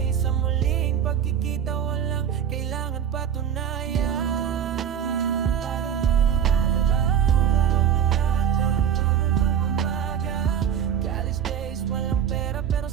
sa muling pagkikita, walang kailangan patunayan.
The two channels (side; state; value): left; quieter; 8.7 dB